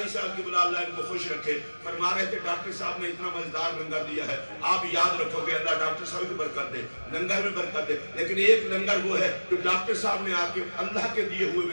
صاحب کی بلا اللہ ان کو خوش رکھے, فرما رہے تھے ڈاکٹر صاحب نے اتنا مزیدار لنگر دیا ہے, آپ یاد رکھو گے اللہ ڈاکٹر صاحب کی برکت دے, لنگر میں برکت دے. لیکن ایک لنگر وہ ہے جو ڈاکٹر صاحب نے آ کے اللہ کے دیے ہوئے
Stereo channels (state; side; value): inverted; both; correlation -1.00